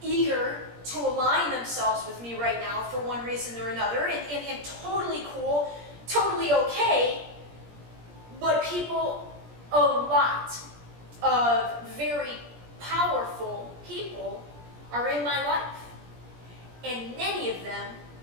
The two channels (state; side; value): late; left; 17 ms